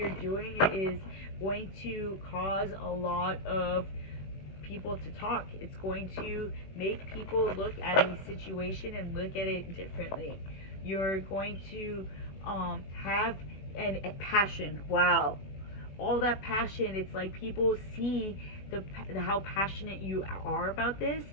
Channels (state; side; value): late; right; 21 ms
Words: doing is going to cause a lot of people to talk. It's going to make people look at a situation and look at it differently. You're going to have a passion. Wow, all that passion. It's like people see how passionate you are about this,